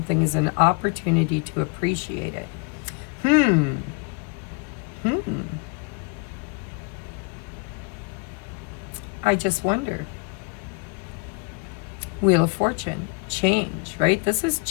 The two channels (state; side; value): quieter; right; 31.2 dB